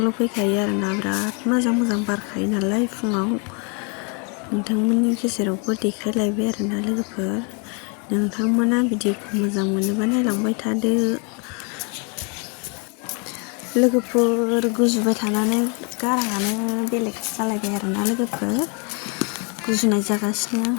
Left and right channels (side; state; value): right; quieter; 35.1 dB